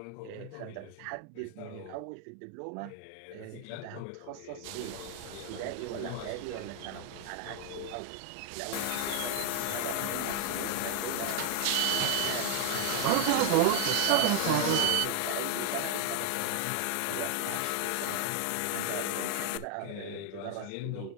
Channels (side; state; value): both; different; correlation 0.00